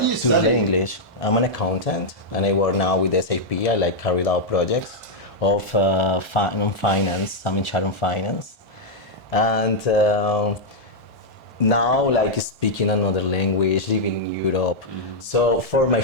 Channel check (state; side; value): normal; both; correlation -0.04